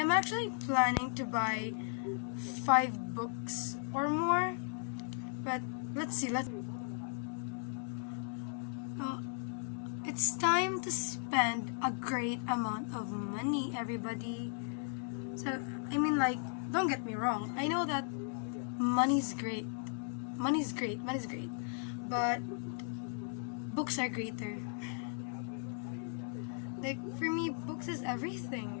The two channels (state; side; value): silent; right; 53 dB below the other